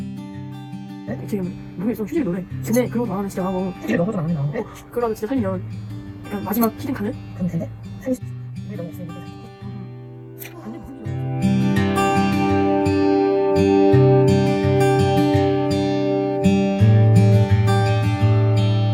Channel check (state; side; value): identical; both; correlation 1.00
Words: 지금 노래 좀 휴지 노래. 근데 그런 거 나가면 진짜 하고. 이게 너무 좀 안 나오고. 그러면 진짜 살면 약간 마지막 히든 카드? 그럼 된대? 우리 너무 없으니까.